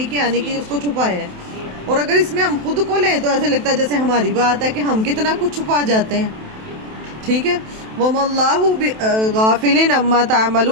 کی آنے کی اس کو چھپایا ہے. اور اگر اس میں ہم خود کو لیں تو ایسے لگتا ہے جیسے ہماری بات ہے کہ ہم کتنا کچھ چھپا جاتے ہیں. ٹھیک ہے، وَمَا اللَّهُ غَافِلٍ عَمَّا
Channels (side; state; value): left; late; 27 ms